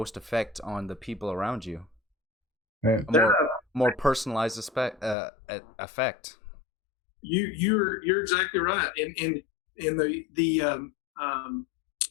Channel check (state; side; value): drops out; right; at 5.2 s